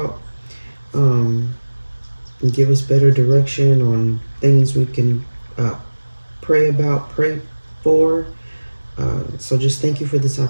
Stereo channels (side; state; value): both; inverted; correlation -1.00